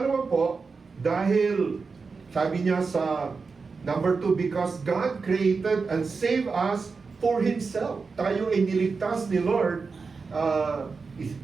po, dahil sabi niya sa number 2, because God created and saved us for Himself. Tayo ay niligtas ni Lord.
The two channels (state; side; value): quieter; left; 4.7 dB